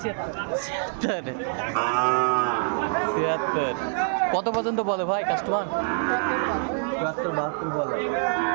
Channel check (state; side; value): silent; left; 61 dB below the other